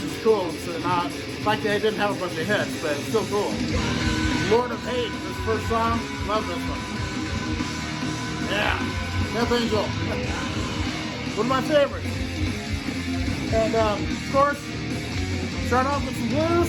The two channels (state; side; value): identical; both; correlation 1.00